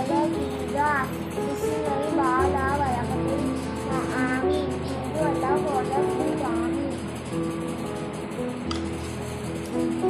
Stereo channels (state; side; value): identical; both; correlation 1.00